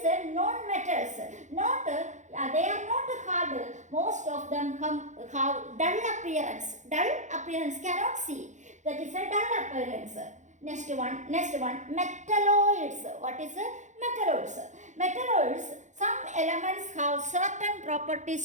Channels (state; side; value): late; left; 0.35 ms